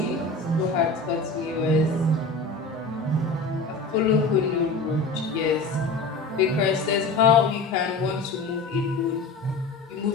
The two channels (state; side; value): quieter; right; 3.5 dB